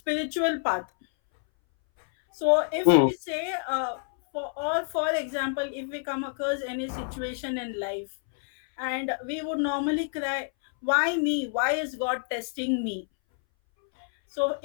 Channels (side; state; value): right; silent; 59 dB below the other